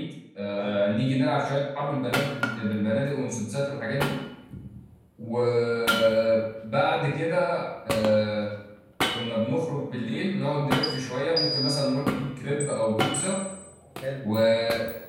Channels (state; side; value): identical; both; correlation 1.00